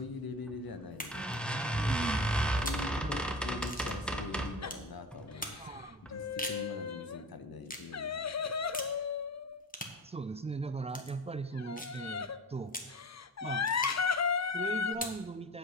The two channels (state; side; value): normal; both; correlation 0.32